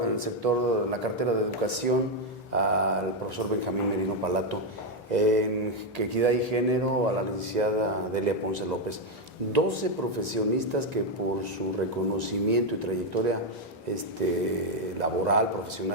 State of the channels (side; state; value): both; normal; correlation 0.03